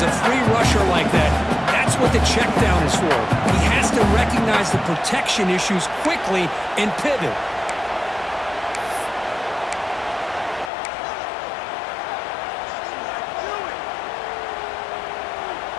a free rusher like that, that's what the check down is for. He has to recognize the protection issues quickly and pivot.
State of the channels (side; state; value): right; drops out; at 10.7 s